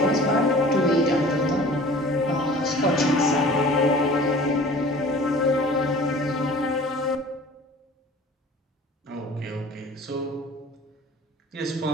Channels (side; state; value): both; normal; correlation 0.45